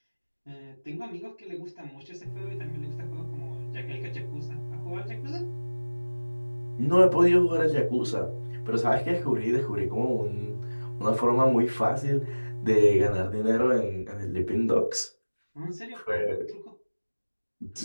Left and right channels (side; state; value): both; inverted; correlation -1.00